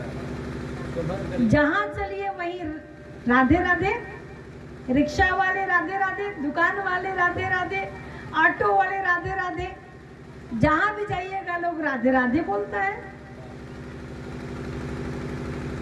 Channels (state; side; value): identical; both; correlation 1.00